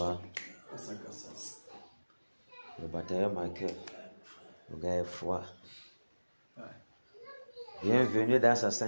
Le batailleur Michael. Le gars est froid. Ouais. Bienvenue dans sa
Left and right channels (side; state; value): both; inverted; correlation -1.00